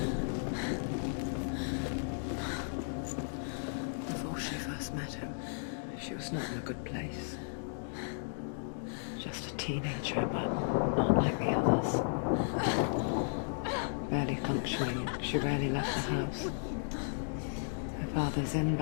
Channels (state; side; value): silent; right; digital silence